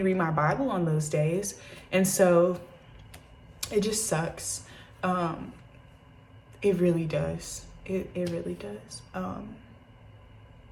read my Bible on those days. And so it just sucks. It really does. It really does.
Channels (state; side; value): identical; both; correlation 1.00